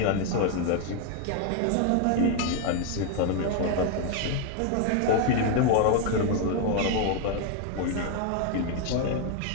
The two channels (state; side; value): different; both; correlation 0.01